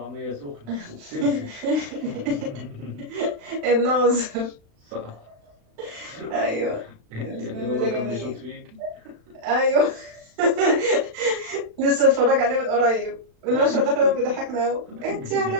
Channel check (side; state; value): left; late; 36 ms